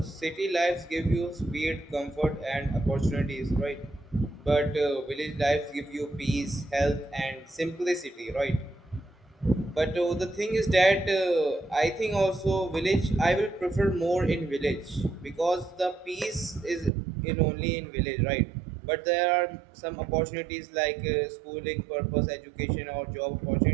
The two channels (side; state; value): left; drops out; at 16.9 s